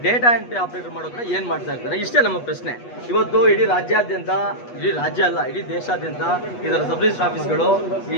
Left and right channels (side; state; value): right; late; 8.2 ms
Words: ಡೇಟಾ ಎಂಟ್ರಿ ಆಪರೇಟರ್ ಮಾಡೋದ್ರೆ ಏನ್ ಮಾಡ್ತಾ ಇರ್ತಾರೆ? ಇಷ್ಟೇ ನಮ್ಮ ಪ್ರಶ್ನೆ. ಇವತ್ತು ಇಡೀ ರಾಜ್ಯಾದ್ಯಂತ, ಇಡೀ ರಾಜ್ಯ ಅಲ್ಲ, ಇಡೀ ದೇಶಾದ್ಯಂತ ಇದರ ಸಬ್ ರಿಜಿಸ್ಟರ್ ಆಫೀಸ್ಗಳು